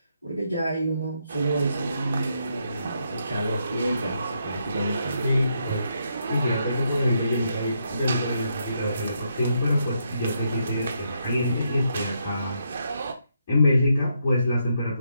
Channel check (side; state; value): both; inverted; correlation -0.78